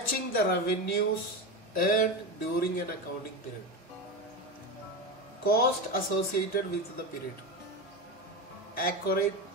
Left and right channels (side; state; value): both; normal; correlation 0.19